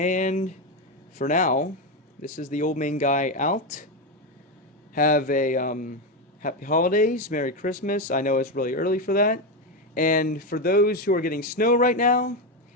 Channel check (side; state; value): both; normal; correlation 0.10